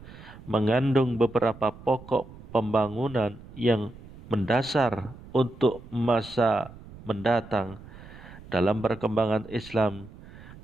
mengandung beberapa pokok pembangunan yang mendasar untuk masa mendatang dalam perkembangan Islam.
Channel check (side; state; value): right; noise; rumble, 18 dB below the sound